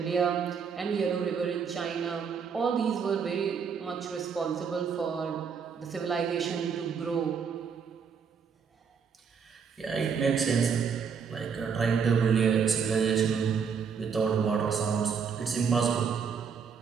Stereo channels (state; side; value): quieter; left; 6.4 dB